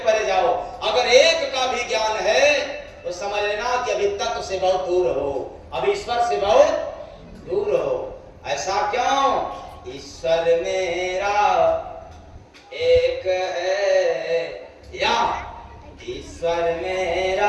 जाओ। अगर एक का भी ज्ञान है तो समझ लेना कि अभी तत्व से बहुत दूर हो, अभी ईश्वर से बहुत दूर हो। ऐसा क्यों? ईश्वर मेरा एक है, या ईश्वर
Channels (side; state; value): both; identical; correlation 1.00